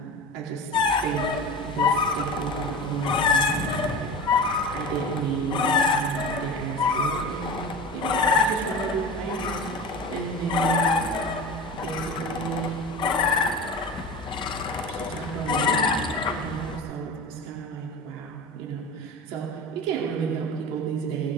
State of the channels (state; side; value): normal; both; correlation 0.31